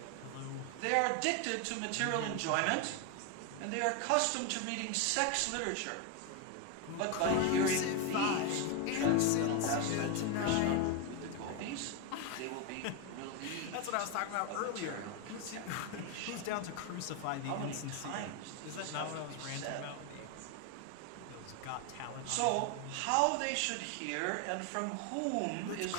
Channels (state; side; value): different; both; correlation 0.01